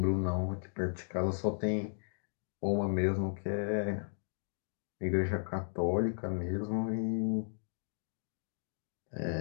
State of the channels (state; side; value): silent; right; digital silence